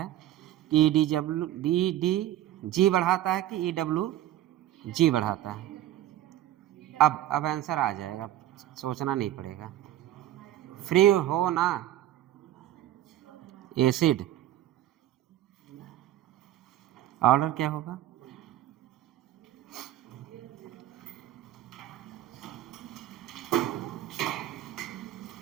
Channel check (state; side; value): quieter; left; 13.2 dB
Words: कि डी जी बढ़ाता है कि EWG बढ़ाता है। अब आंसर आ जाएगा, सोचना नहीं पड़ेगा। फ्री हो ना एसिड, ऑर्डर क्या होगा,